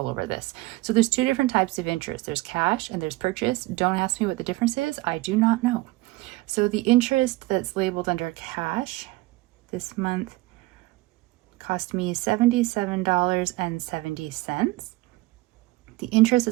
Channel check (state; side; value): quieter; left; 20.3 dB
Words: over this. So there's 2 different types of interest. There's cash and there's purchase. Don't ask me what the difference is. I do not know. So the interest that's labeled under cash this month cost me $77.70. The interest